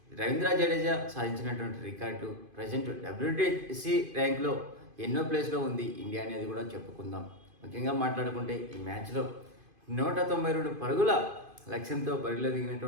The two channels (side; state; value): left; late; 2.5 ms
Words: రవీంద్ర జడేజా సాధించినటువంటి రికార్డు ప్రజెంట్ WTC ర్యాంక్లో ఎన్నో ప్లేస్లో ఉంది ఇండియా అనేది కూడా చెప్పుకుందాం. ముఖ్యంగా మాట్లాడుకుంటే ఈ మ్యాచ్లో 192 పరుగుల లక్ష్యంతో బరిలో